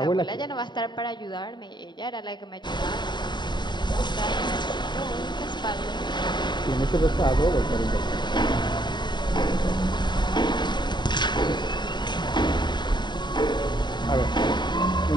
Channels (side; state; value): right; late; 0.22 ms